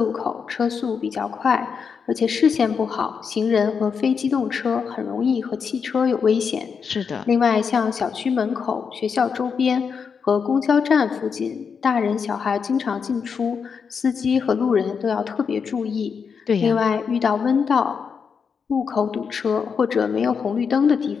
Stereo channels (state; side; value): quieter; right; 6.1 dB